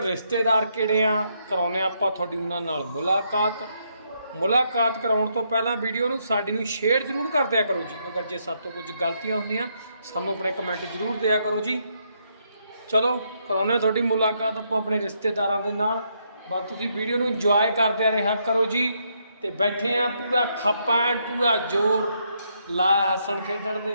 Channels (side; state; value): both; inverted; correlation -0.76